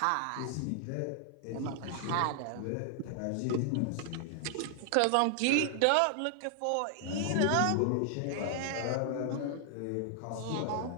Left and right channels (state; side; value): different; both; correlation 0.00